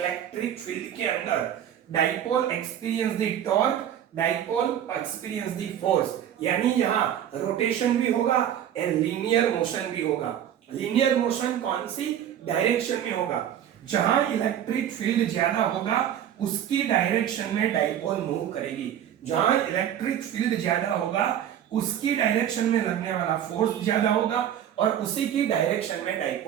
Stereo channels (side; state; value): left; quieter; 10.2 dB